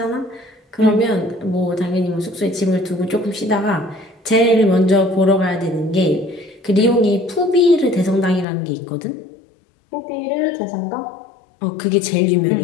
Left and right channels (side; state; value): right; drops out; at 8.5 s